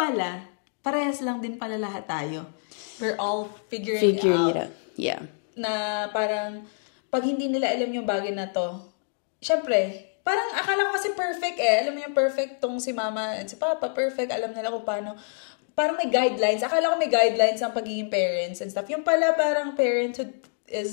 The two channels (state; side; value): silent; right; digital silence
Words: parehas lang din pala lahat tayo. We're all figuring out. Yeah. Na parang, pag hindi nila alam yung bagay na to, syempre, parang akala ko kasi perfect eh. Alam mo yung perfect tong si mama at si papa, perfect. Alam nila kung paano. Parang may guidelines. Akala ko may guidelines ang pagiging parents and stuff. Yung pala parang parenthood